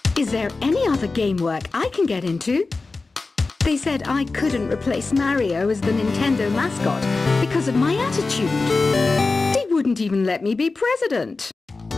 Is there any other game work I can get into? They said I couldn't replace Mario as the Nintendo mascot because of my attitude. They wouldn't even let me be president.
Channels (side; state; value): right; quieter; 3.8 dB